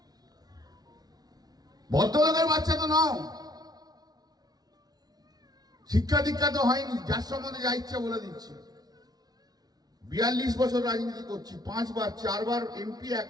ভদ্রলোকের বাচ্চা তো নাও, শিক্ষা দীক্ষা তো হয়নি, যার সম্বন্ধে যা ইচ্ছা বলে দিচ্ছি। 42 বছর রাজনীতি করছি, 5 বার 4 বার এমপি, 1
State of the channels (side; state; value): left; late; 0.19 ms